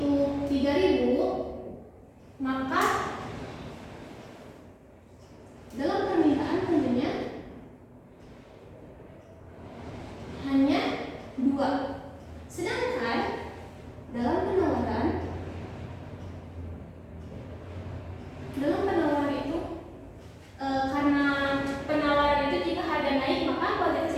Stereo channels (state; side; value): identical; both; correlation 1.00